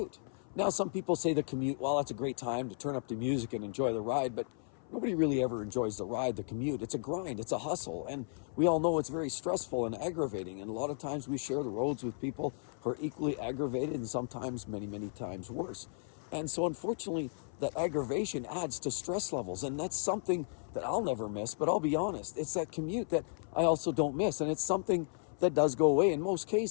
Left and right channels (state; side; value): silent; right; 55 dB below the other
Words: Now, some people say the commute, well, that's a great time to turn up the music and enjoy the ride, but nobody really ever enjoys the ride, the commute. It's a grind, it's a hustle, and we all know it's very stressful and aggravating, and a lot of times we share the roads with people who are equally aggravated and sometimes many, many times worse. And so unfortunately, that aggravation adds to stress levels, and that's something that I'll never miss, but I'll be honest, it's that commute that I also don't miss, and it's something that does go away in most